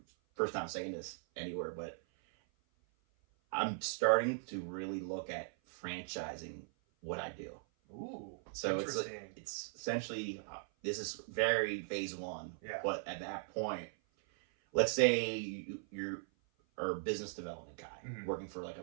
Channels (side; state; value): left; silent; 52 dB below the other